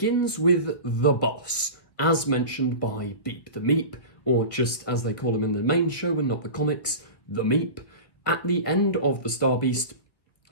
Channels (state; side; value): late; right; 1.8 ms